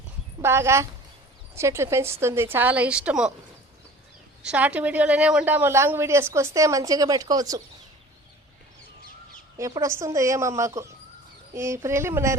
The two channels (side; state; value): both; normal; correlation 0.44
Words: బాగా చెట్లు పెంచుతుంది, చాలా ఇష్టము. షార్ట్ వీడియోలోనే ఉంటాము, లాంగ్ వీడియోస్కి వస్తే మంచిగా పెట్టుకోవచ్చు. ఎప్పుడు వస్తుందో ఏమో మాకు ఈ